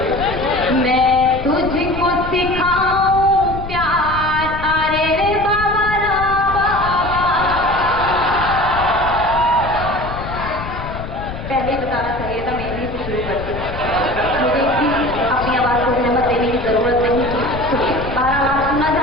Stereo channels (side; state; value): left; noise; rumble, 9 dB below the sound